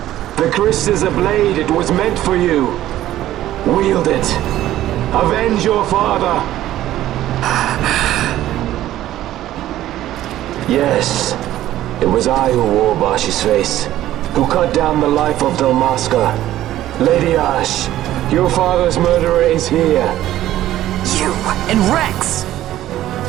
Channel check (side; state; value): left; quieter; 13.7 dB